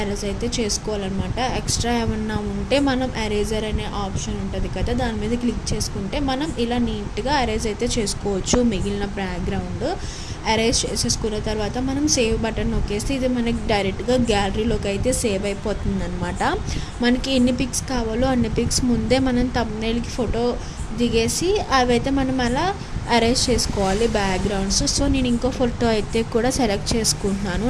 ఎరేజ్ అయితే చేసుకోవాలన్నమాట. ఎక్స్ట్రా ఏమన్నా ఉంటే మనం ఎరేజర్ అనే ఆప్షన్ ఉంటుంది కదా, దాని మీద క్లిక్ చేసుకుంటే మనం ఇలా నీట్గా ఎరేజ్ అయితే చేసుకోవచ్చు. మిగిలిన బ్యాక్గ్రౌండ్ అరేంజ్ చేసేసుకున్న తర్వాత మనం సేవ్ బటన్ నొక్కేస్తే ఇది మనకి డైరెక్ట్గా గ్యాలరీలోకి అయితే సేవ్ అయిపోతుంది అనమాట. మనకి ఎన్ని పిక్స్ కావాలో అన్ని పిక్స్ ముందే మనం థంబ్నెయిల్కి ఫోటో దిగేసి అవైతే మనం అలా అరేంజ్ చేసుకోవాలి బ్యాక్గ్రౌండ్స్. సో నేను ఇంకో ఫోటో అయితే కూడా సెలెక్ట్ చేసుకుంటున్నాను.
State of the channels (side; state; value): both; identical; correlation 1.00